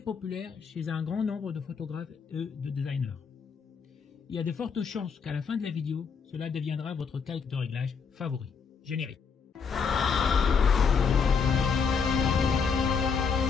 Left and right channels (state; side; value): quieter; right; 5.8 dB